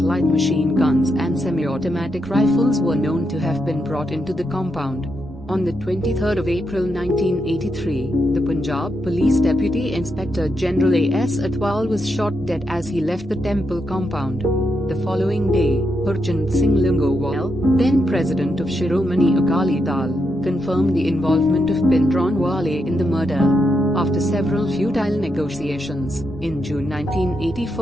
light machine guns and semi-automatic rifles were known to have been brought into the compound. On the 23rd of April 1983, the Punjab Police Deputy Inspector General A.S. Atwal was shot dead as he left the temple compound. The following day, Harchand Singh Lingowal, then president of Shiromani Akali Dal, confirmed the involvement of Bhindranwale in the murder. After several futile negotiations, in June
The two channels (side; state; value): both; normal; correlation 0.82